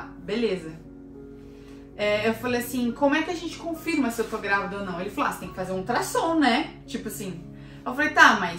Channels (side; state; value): both; identical; correlation 1.00